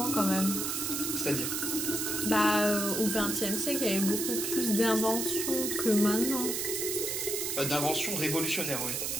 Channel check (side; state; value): right; noise; hiss, 1 dB below the sound